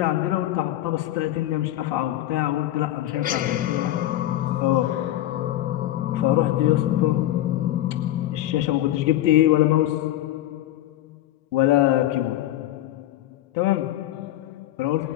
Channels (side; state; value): right; quieter; 14.0 dB